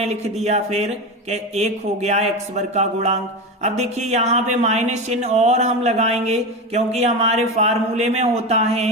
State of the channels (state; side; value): normal; both; correlation 0.20